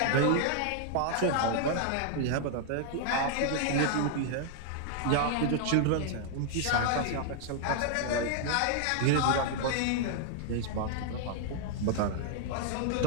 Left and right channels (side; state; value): both; different; correlation 0.00